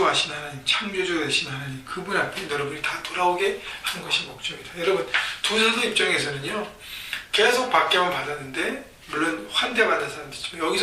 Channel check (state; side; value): identical; both; correlation 1.00